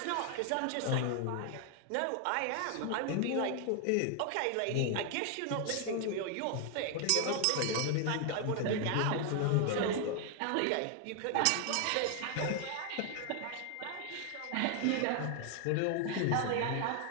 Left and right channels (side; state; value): both; different; correlation 0.00